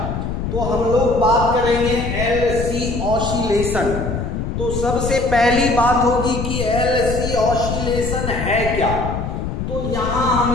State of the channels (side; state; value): left; noise; rumble, 4 dB below the sound